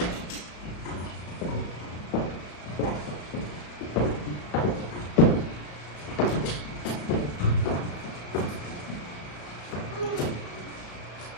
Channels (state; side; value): late; right; 34 ms